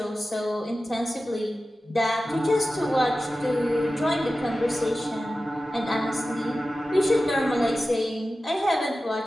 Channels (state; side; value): normal; both; correlation 0.94